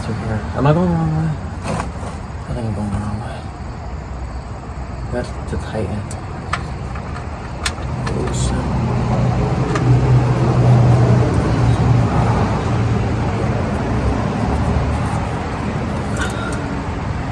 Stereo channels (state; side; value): identical; both; correlation 1.00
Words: here. Am I going the wrong way? I think I'm going the wrong way. That's to tighten. Oops.